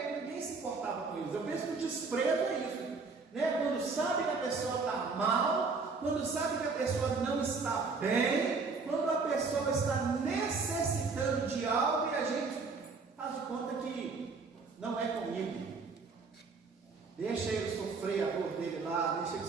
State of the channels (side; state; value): left; quieter; 4.4 dB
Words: ninguém se importava com coisas. Eu penso que o desprezo é isso, né? Quando sabe que a pessoa está mal, quando sabe que a pessoa não está bem, quando a pessoa está necessitando de algo e a gente faz de conta que não é comigo. Deixa ele sofrer a dor dele lá, deixa ele